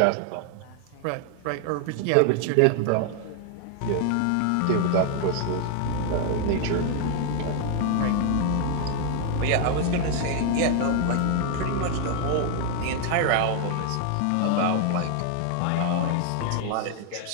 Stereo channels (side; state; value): both; different; correlation 0.00